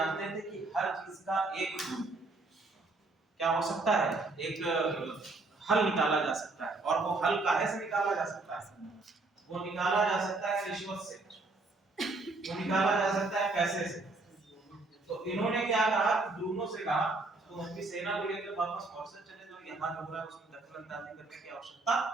थे कि हर चीज का एक क्या हो सकता है, एक हल निकाला जा सकता है, और वो हल काहे से निकाला जा सकता है? वो निकाला जा सकता है रिश्वत से, वो निकाला जा सकता है पैसे से। तो इन्होंने क्या कहा, ब्रूनो से कहा तुम अपनी सेना को लेकर वापस मॉरिशस चले जाओ, यहाँ जो हो रहा है उसमें दखल-अंदाजी करने की आवश्यकता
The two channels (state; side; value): quieter; left; 3.4 dB